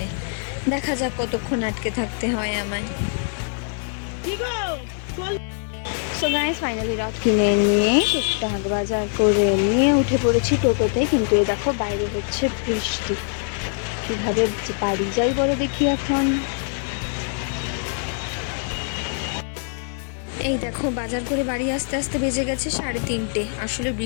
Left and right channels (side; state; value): right; silent; 63 dB below the other